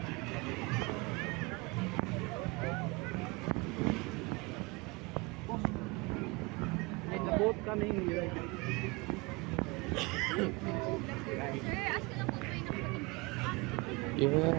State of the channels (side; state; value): left; quieter; 26.4 dB